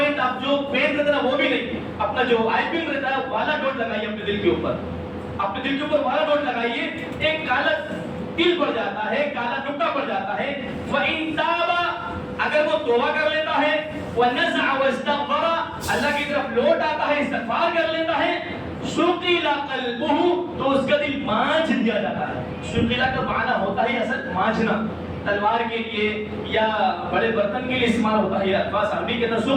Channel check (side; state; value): both; identical; correlation 1.00